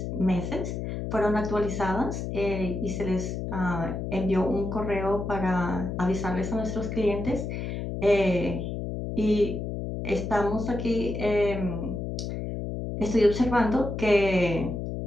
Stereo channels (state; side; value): noise; left; hum, 4 dB below the sound